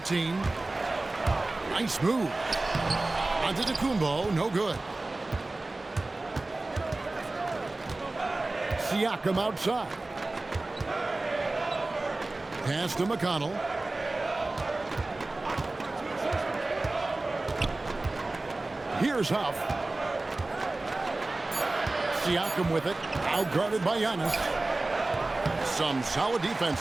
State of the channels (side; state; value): left; quieter; 3.0 dB